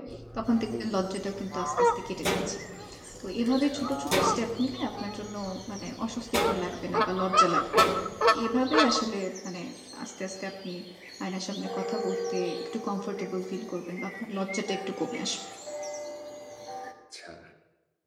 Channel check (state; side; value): identical; both; correlation 1.00